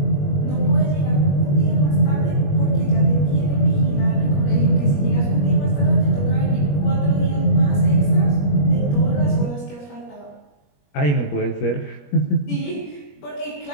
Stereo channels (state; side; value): late; right; 21 ms